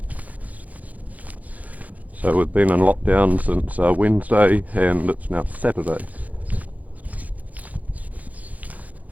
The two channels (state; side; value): late; left; 0.076 ms